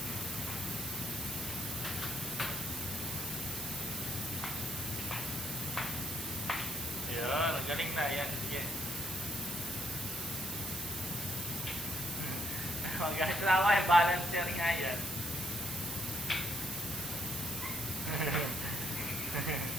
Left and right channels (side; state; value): right; noise; hiss, 5 dB below the sound